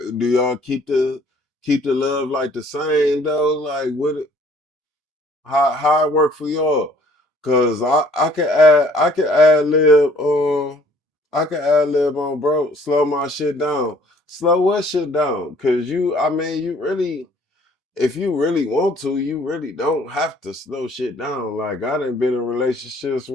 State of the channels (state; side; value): normal; both; correlation 0.58